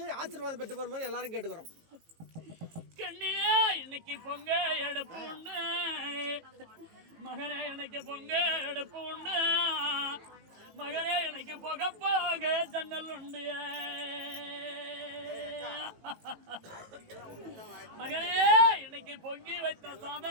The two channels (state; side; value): late; left; 18 ms